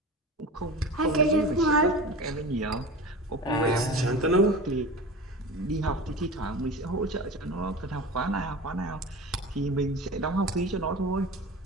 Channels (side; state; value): both; normal; correlation 0.31